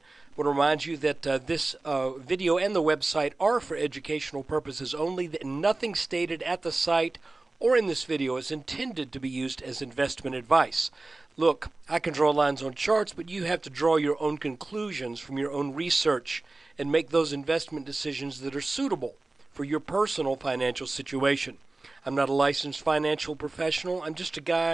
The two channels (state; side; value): quieter; left; 3.2 dB